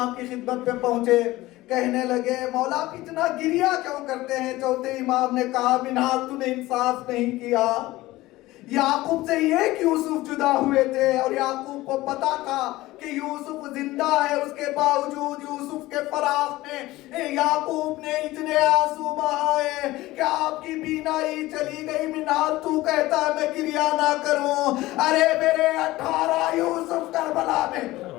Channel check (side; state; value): right; quieter; 18.0 dB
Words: کی خدمت پہ پہنچے, کہنے لگے مولا آپ اتنا گریا کیوں کرتے ہیں؟ چوتھے امام نے کہا, منہال تو نے انصاف نہیں کیا. یعقوب سے یہ کہ یوسف جدا ہوئے تھے اور یعقوب کو پتا تھا کہ یوسف زندہ ہے, اس کے باوجود یوسف کے فراق میں یعقوب نے اتنے آنسو بہائے کہ آپ کی بینائی چلی گئی. منہال تو کہتا ہے میں گریا نہ کروں, ارے میرے 18 یوسف کربلا میں.